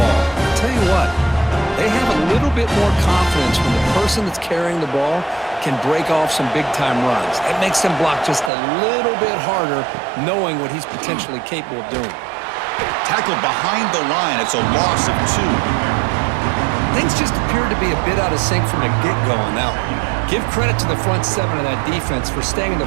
I'll tell you what. They have a little bit more confidence when the person that's carrying the ball can break off some big-time runs. That makes them block just a little bit harder, knowing what he's potentially capable of doing. Tackled behind the line. It's a loss of 2. Things just appear to be a bit out of sync from the get-go on that one. Give credit to the front 7 of that defense for staying in the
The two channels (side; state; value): left; drops out; at 8.5 s